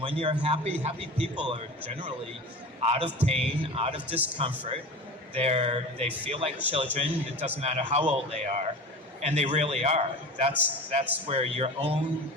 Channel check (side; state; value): both; normal; correlation 0.34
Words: when you're happy people are generally out of pain, out of discomfort. They feel like children. It doesn't matter how old they are. And they really are. That's where your own